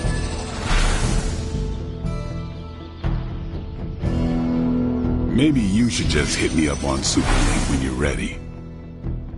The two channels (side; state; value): both; identical; correlation 1.00